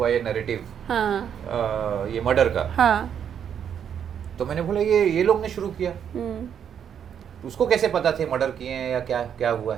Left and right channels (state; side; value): quieter; left; 8.4 dB